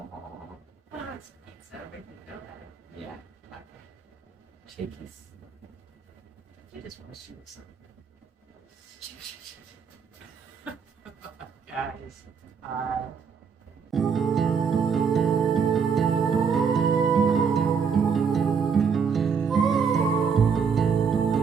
Oh, it's pizza. We can go there. yeah, Okay. shakies. You just want to shoot something. Guys,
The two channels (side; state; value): left; quieter; 6.3 dB